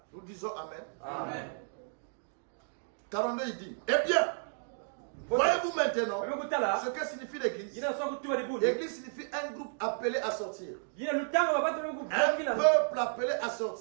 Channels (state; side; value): silent; left; digital silence